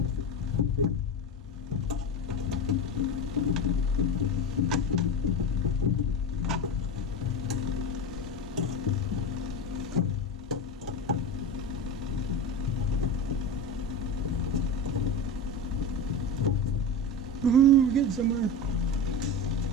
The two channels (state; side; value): normal; both; correlation 0.23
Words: Woohoo, getting somewhere.